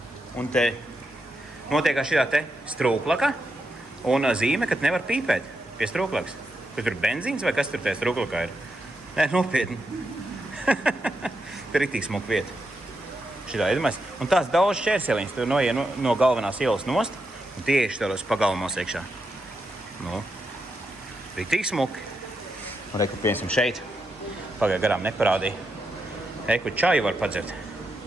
un te notiekā šī te strūklaka un zīme, ka nevar pīpēt pie strūklakas. Kur tur benzīns vai kas tur tajā strūklakā ir? Nē, nopietni. Tur ir tik smuka vieta. Šitā, iedomājies. Un tās daudz šķērseliņas, tur noiet no galvenās ielas nost, un tieši tādos pagalmos iekšā. Nu, ir tik smuki. Un reku, piemēram, šeit. Pagāja garām neparādīja. Eku čaju var padzert.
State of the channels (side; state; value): both; normal; correlation 0.84